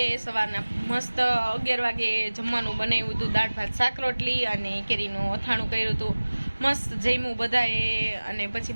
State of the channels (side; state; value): both; inverted; correlation -1.00